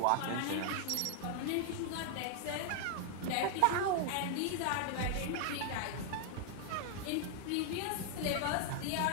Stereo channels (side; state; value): both; different; correlation 0.00